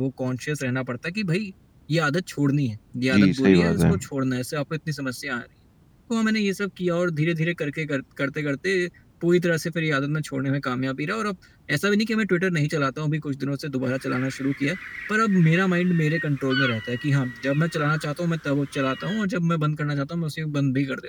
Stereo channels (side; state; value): both; identical; correlation 1.00